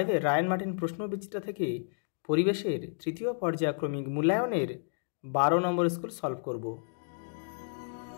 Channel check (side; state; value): right; silent; digital silence